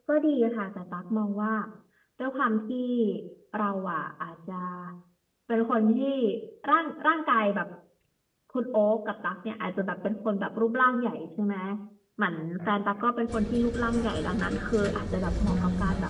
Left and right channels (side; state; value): both; identical; correlation 1.00